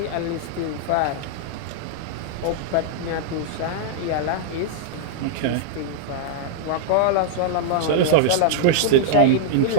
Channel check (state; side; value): different; both; correlation -0.01